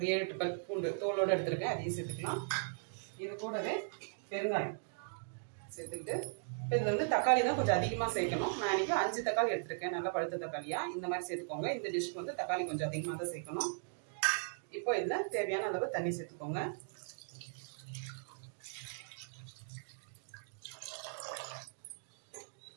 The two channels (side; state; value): left; silent; digital silence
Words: 7-8 பல் பூண்டு தோலோடு எடுத்திருக்கேன். அதையும் சேர்த்துக்கலாம். இது கூடவே பெருங்காயம் சேர்த்துக்கிட்டு இப்போ இதில் வந்து தக்காளி தான் கொஞ்சம் அதிகமாக சேர்க்கணும். நான் இன்னைக்கு 5 தக்காளி எடுத்திருக்கேன். நல்லா பழுத்த தக்காளியா இந்த மாதிரி சேர்த்துக்கோங்க. இந்த டிஷ்க்கு வந்து தக்காளி கொஞ்சம் அதிகமாக தான் சேர்க்கணும். இப்போ இதில் தேவையான அளவு தண்ணி சேர்த்துக்கோங்க.